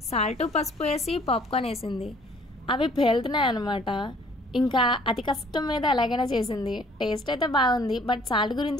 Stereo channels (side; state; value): both; normal; correlation 0.57